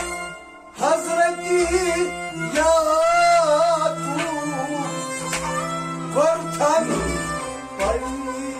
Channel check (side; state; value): both; identical; correlation 1.00